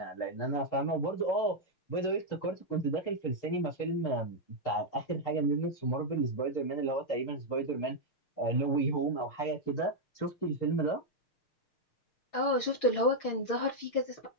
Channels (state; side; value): late; right; 6.6 ms